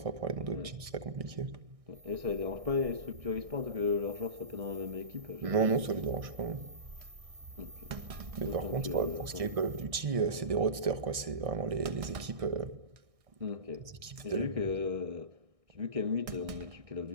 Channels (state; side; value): late; left; 1.6 ms